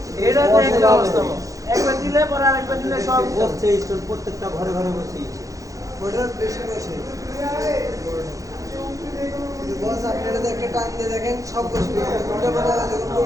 এটা তো একটা অবস্থা একবার দিলে পরে আরেকবার দিলে সব বসছে ইনস্ট্রুমেন্ট প্রত্যেকটা ঘরে বসেছে ওটার বেশি বসে বস আপনারা একটা টান দিয়ে দেখেন সব বসবে ওটা বড় যখন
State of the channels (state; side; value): late; left; 0.16 ms